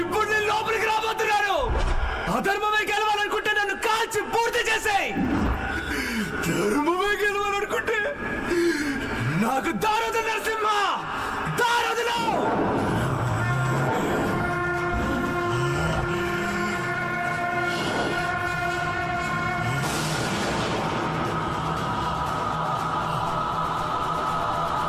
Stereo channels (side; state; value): both; identical; correlation 1.00